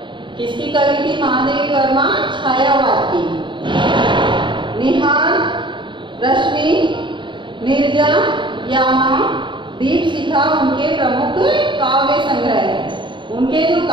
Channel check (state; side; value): late; left; 0.23 ms